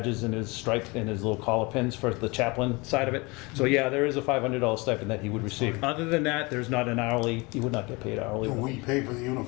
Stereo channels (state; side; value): quieter; right; 26.2 dB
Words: and his stripe and his little collar pins for the chaplain side of it. So yeah, there is a $500 stipend that he would receive. Other than that, there's not an hourly. He would not get paid hourly. Do we pay for the